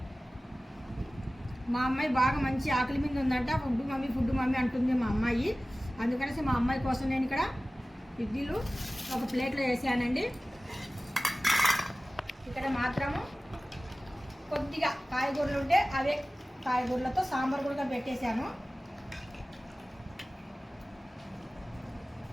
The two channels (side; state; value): both; normal; correlation 0.97